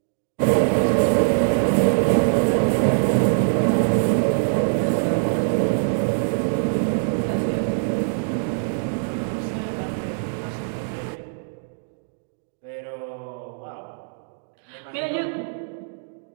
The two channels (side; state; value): left; silent; digital silence